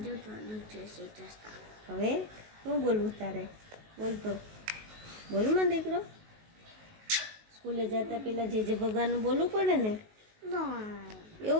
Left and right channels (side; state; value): left; late; 19 ms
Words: જય શ્રી કૃષ્ણ. હવે શું બોલવું તારે? બોલતો બોલું માં દીકરો. સ્કૂલે જતા પહેલાં જે ભગવાનનું બોલવું પડે ને?